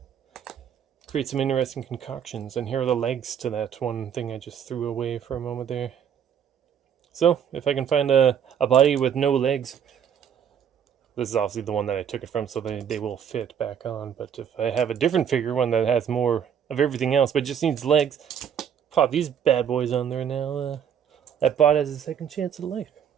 create some interesting concoctions. And here are the legs to that one thing I just threw away for a moment there. So, if I can find a body with no legs, this is obviously the one that I took it from, so they will fit back on. But if I have a different figure, one that has more of everything else, but just needs legs, pop these bad boys on there now. That bot has a second chance at life.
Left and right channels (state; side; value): quieter; left; 8.4 dB